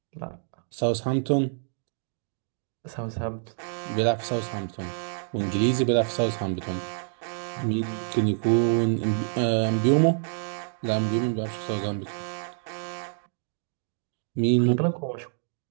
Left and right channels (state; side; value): silent; left; digital silence